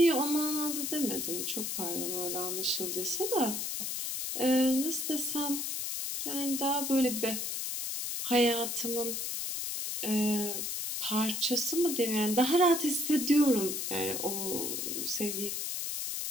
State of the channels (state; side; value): noise; left; hiss, 3 dB below the sound